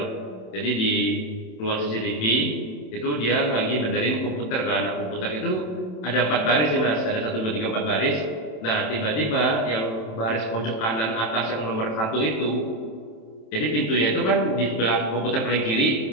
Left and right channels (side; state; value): right; late; 27 ms